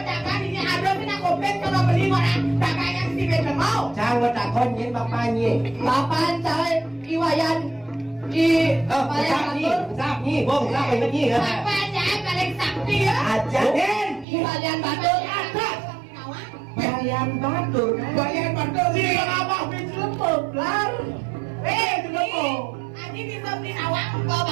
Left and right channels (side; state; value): left; drops out; at 14.2 s